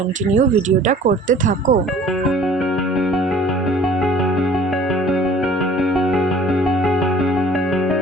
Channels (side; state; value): both; normal; correlation 0.51